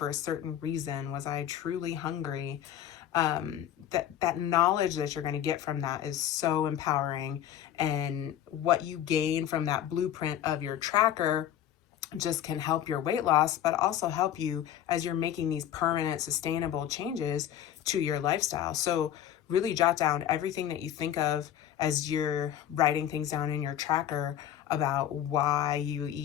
a certain reason? Was I truly hungry? That knowledge that you're going to get from that is so empowering. And what you gain from that blueprint of your tracker just can help your weight loss, but also help you as you're making these permanent, sustainable changes to your lifestyle. So really jot down everything that you think of as you're writing things down in your tracker about why you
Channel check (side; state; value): right; quieter; 10.8 dB